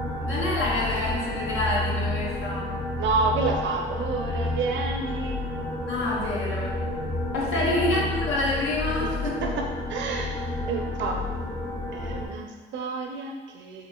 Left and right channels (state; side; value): normal; both; correlation 0.37